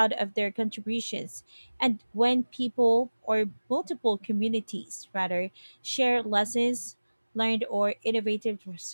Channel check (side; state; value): both; inverted; correlation -1.00